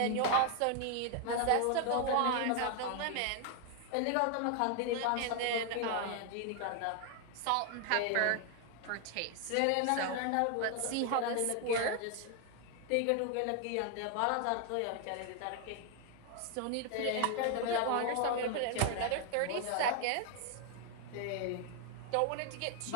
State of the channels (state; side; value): different; both; correlation 0.00